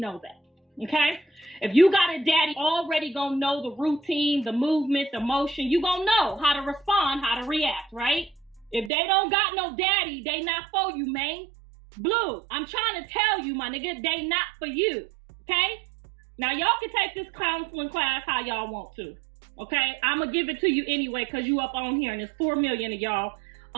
that, okay? If you got a daddy, already gonna know the routine, the movement, the motion. You gonna know how to respond, how to react, right? If they don't got no daddy, they not for you, man. Blue, I'm trying to tell you, my nigga, they not for you, okay? Now, y'all can take this counseling class how y'all want to, okay? I'm going to give it to you anyway because you up on here, and there's 4 million of y'all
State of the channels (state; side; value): drops out; left; at 8.9 s